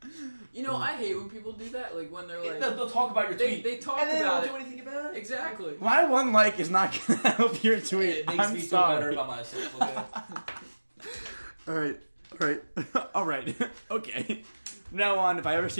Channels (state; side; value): inverted; both; correlation -1.00